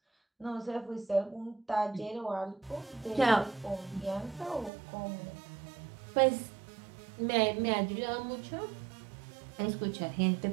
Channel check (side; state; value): left; drops out; at 4.7 s